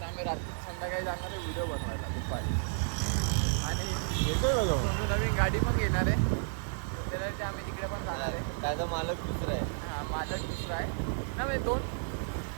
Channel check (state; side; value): silent; left; 55 dB below the other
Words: आम्ही रात्री संध्याकाळी जाणार आहे व्हिडिओ बनवायला दुपारी. आणि सोनू नवीन गाडी पण घेणार आहे. त्याच्यासाठी आम्ही तिकडे पण जाणार आहे. त्याचा मालक दुसरा आहे. हा, मालक दुसरा आहे ना. म्हणजे 2